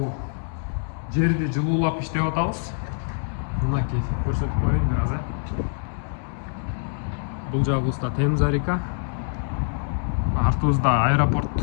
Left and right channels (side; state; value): right; silent; digital silence